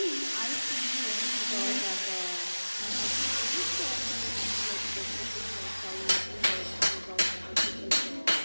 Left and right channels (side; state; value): both; inverted; correlation -1.00